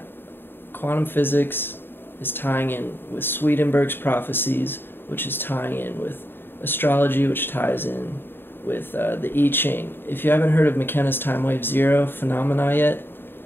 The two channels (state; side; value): late; right; 0.10 ms